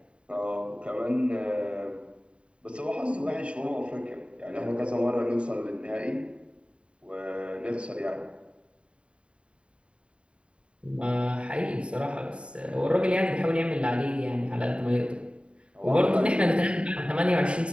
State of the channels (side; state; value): left; late; 0.057 ms